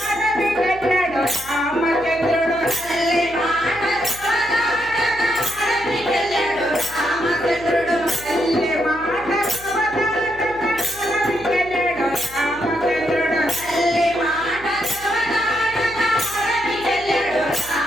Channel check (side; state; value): left; noise; hum, 20 dB below the sound